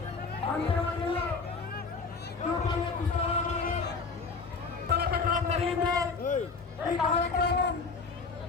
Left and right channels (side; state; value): right; quieter; 4.6 dB